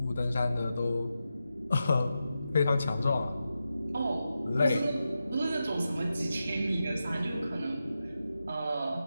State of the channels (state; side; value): inverted; both; correlation -0.90